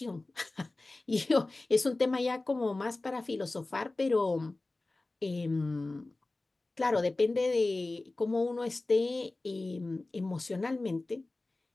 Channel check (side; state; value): right; quieter; 3.1 dB